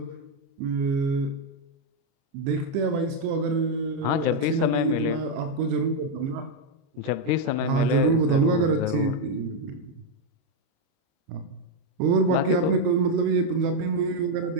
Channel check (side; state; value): left; late; 30 ms